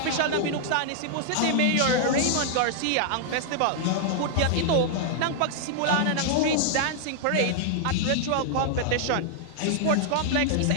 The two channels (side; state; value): both; different; correlation -0.01